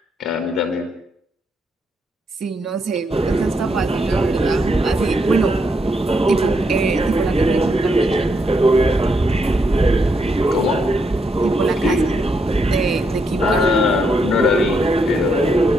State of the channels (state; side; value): normal; both; correlation 0.78